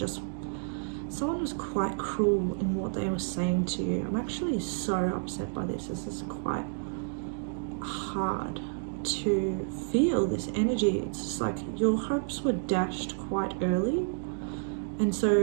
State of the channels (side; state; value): left; silent; digital silence